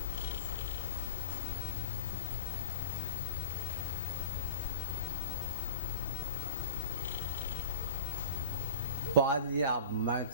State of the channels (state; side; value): inverted; both; correlation -0.43